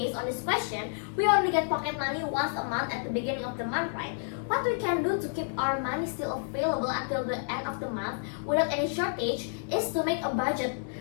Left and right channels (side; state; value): right; silent; digital silence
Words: on this question, we only get pocket money once a month at the beginning of the month, right? What we can do to keep our money still available until the end of the month without any shortage is to make a budget.